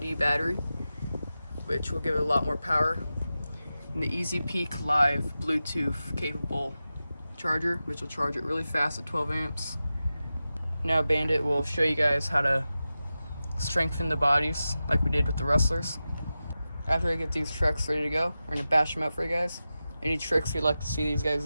battery, which will give it a lot more power. And the Easy Peak Live Bluetooth capable charger, which will charge it really fast at 12 amps. Now Bandit will show you guys how to strengthen the bodies like we did with the Rustlers. After I get these trucks ready to go, we're gonna bash them out for you guys. Any tricks you'd like to see these guys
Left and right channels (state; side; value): inverted; both; correlation -0.93